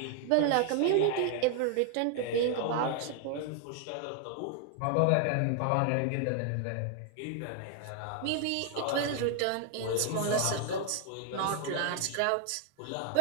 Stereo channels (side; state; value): both; different; correlation 0.00